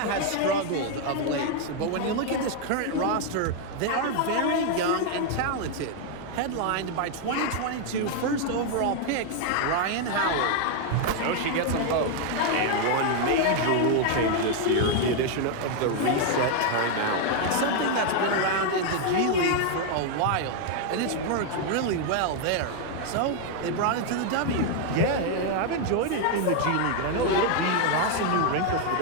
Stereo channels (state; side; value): different; both; correlation 0.00